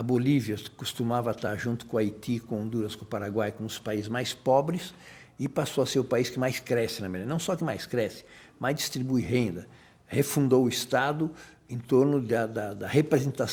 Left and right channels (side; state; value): both; identical; correlation 1.00